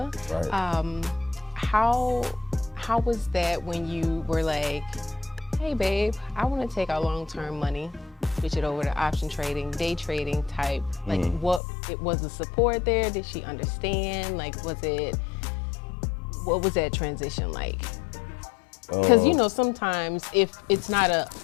Right. How was that when you were like, hey babe, I want to take our long-term money, switch it over to option trading, day trading type? Like, what was the support there? Did she understand? Like, what was that transition like? Because, you know, sometimes if it's not a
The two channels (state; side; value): drops out; right; at 11.6 s